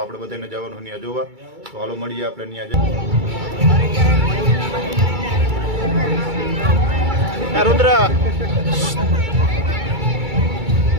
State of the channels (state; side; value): late; left; 2.3 ms